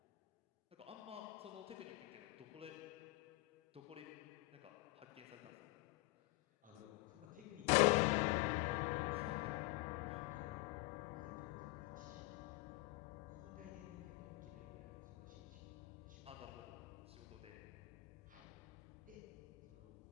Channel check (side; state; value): right; quieter; 21.6 dB